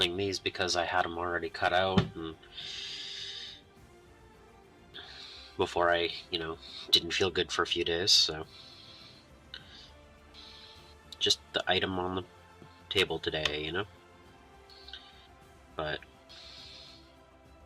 these because I had them already cut out, and before I, didn't feel good for a few days, so just the item on the table today, But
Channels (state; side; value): identical; both; correlation 1.00